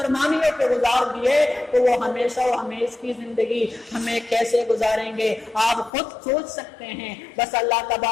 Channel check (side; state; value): right; drops out; at 5.9 s